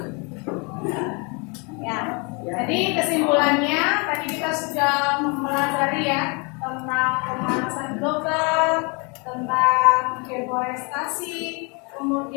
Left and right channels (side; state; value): right; quieter; 32.1 dB